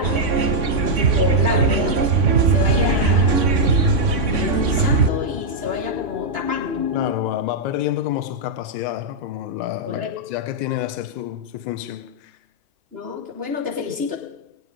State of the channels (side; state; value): left; late; 3.5 ms